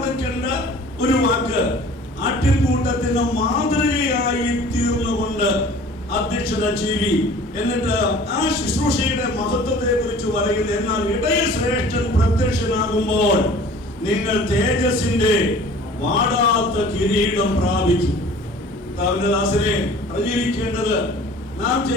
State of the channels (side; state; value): both; normal; correlation 0.47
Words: ഒരു വാക്ക്, ആട്ടിൻകൂട്ടത്തിന് മാതൃകയായി തീർന്നുകൊണ്ട് അധ്യക്ഷത ചെയ്യും. എന്നിട്ട് ആ ശുശ്രൂഷയുടെ മഹത്വത്തെ കുറിച്ച് പറയുന്നത്, എന്നാൽ ഇടയശ്രേഷ്ഠൻ പ്രത്യക്ഷനാകുമ്പോൾ നിങ്ങൾ തേജസ്സിന്റെ വാടാത്ത കിരീടം പ്രാപിച്ചു. ദാസനെ അറിഞ്ഞിരിക്കേണ്ടത്, നാം